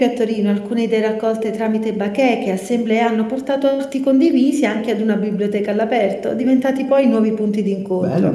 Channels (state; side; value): identical; both; correlation 1.00